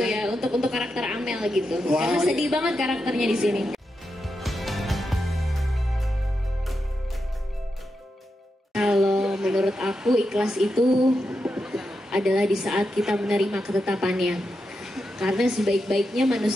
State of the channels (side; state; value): both; normal; correlation 0.87